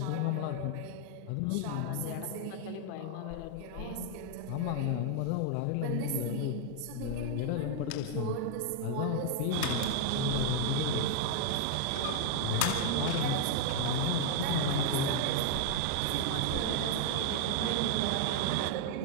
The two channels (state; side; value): different; both; correlation 0.00